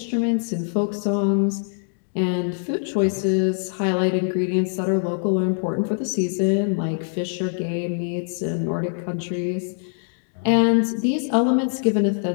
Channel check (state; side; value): silent; right; digital silence